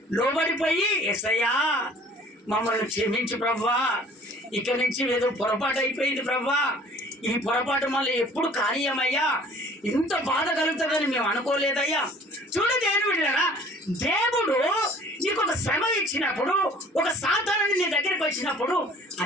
లోబడిపోయి యేసయ్యా మమ్మల్ని క్షమించు ప్రభువా, ఇక నుంచి ఏదో పొరపాటు అయిపోయింది ప్రభువా, ఈ పొరపాటు మళ్ళీ ఎప్పుడు కానీయమయ్యా, ఇంత బాధ కలుగుతుందని మేము అనుకోలేదయ్యా. చూడు దేవుని బిడ్డలారా, దేవుడు నీకు ఒక శ్రమ ఇచ్చినప్పుడు, ఒక సాధారణ నీ దగ్గరికి వచ్చినప్పుడు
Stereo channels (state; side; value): normal; both; correlation 0.51